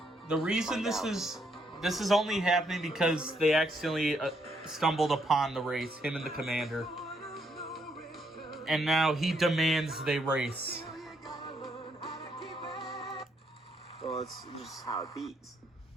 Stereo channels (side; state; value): both; normal; correlation 0.74